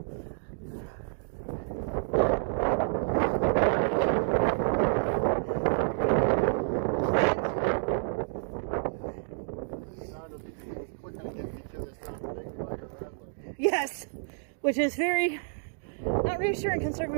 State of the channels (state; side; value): silent; left; digital silence